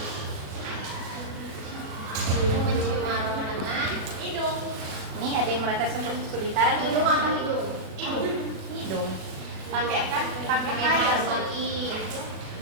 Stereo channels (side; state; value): left; late; 36 ms